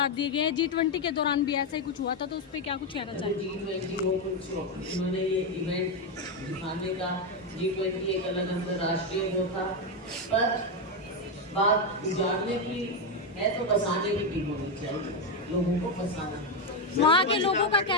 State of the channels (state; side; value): normal; both; correlation 0.06